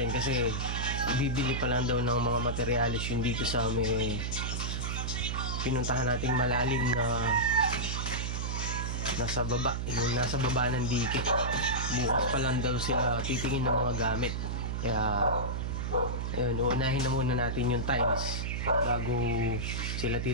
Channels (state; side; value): noise; right; hum, 2 dB below the sound